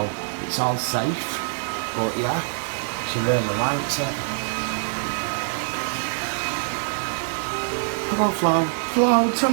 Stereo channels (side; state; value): left; silent; digital silence